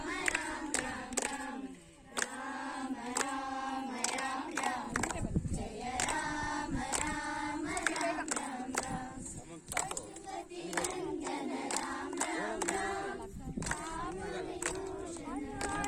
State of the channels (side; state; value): both; identical; correlation 1.00